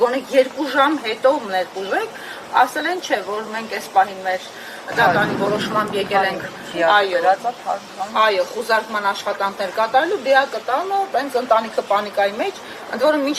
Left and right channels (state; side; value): identical; both; correlation 1.00